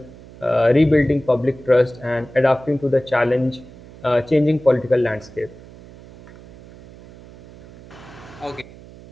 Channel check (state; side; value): noise; right; hum, 20 dB below the sound